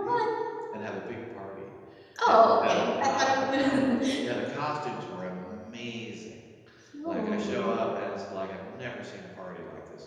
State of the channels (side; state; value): both; identical; correlation 1.00